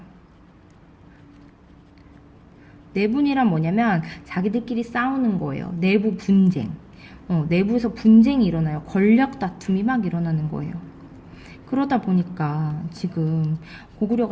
내분이란 뭐냐면 자기들끼리 싸우는 거예요. 내부 분쟁. 내부에서 분쟁이 일어나요. 권력 다툼이 막 일어나는 거예요. 그러다 보니까 지금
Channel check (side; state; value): both; identical; correlation 1.00